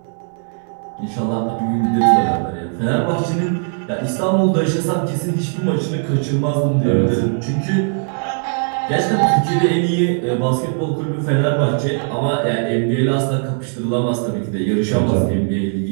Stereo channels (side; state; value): left; silent; 56 dB below the other